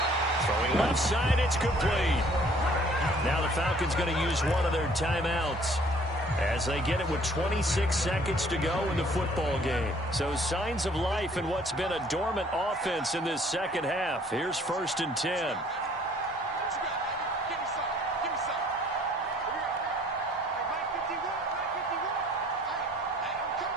Throwing left side, it's complete. Now the Falcons going to use one of their timeouts as they get it with 26 seconds to go in the football game. So signs of life in what's been a dormant offense in this second half. Here's 1st and 10.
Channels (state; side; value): normal; both; correlation 0.57